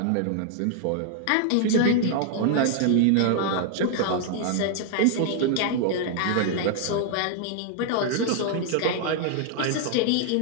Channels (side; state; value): both; different; correlation 0.00